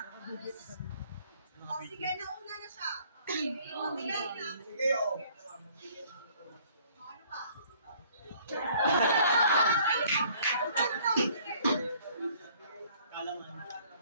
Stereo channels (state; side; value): inverted; both; correlation -0.58